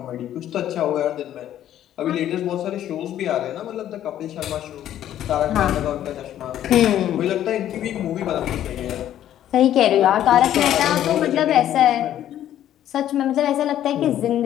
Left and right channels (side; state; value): right; quieter; 11.6 dB